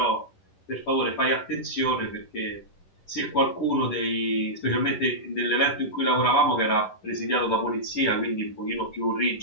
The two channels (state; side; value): late; right; 11 ms